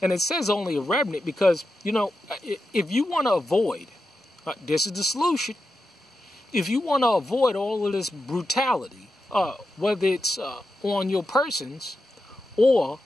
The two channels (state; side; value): normal; both; correlation 0.89